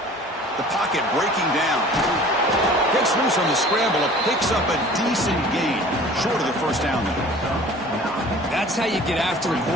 The pocket breaking down. Gets loose on the scramble. It picks up a decent gain. Short of the first down there. That's how you get after the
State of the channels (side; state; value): both; normal; correlation 0.46